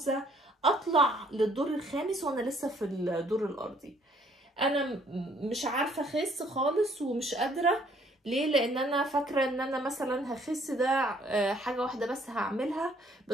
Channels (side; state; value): both; normal; correlation 0.63